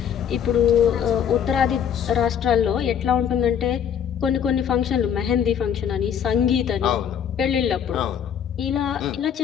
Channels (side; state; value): right; quieter; 8.5 dB